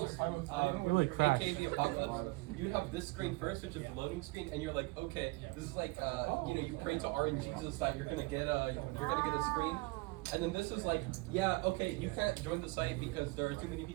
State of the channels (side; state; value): left; quieter; 24.0 dB